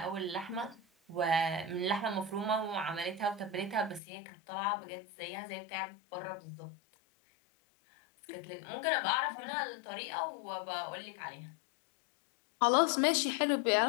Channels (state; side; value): drops out; right; at 4.0 s